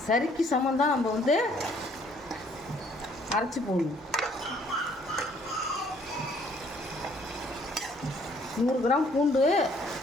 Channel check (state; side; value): normal; both; correlation 0.62